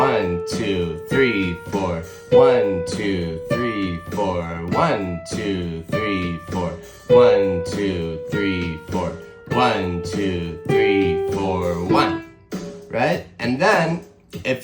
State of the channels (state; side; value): identical; both; correlation 1.00